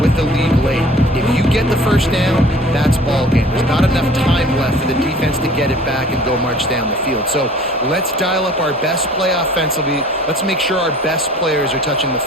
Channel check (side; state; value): both; normal; correlation 0.49